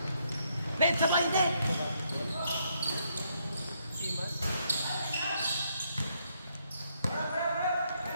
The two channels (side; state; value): both; inverted; correlation -0.74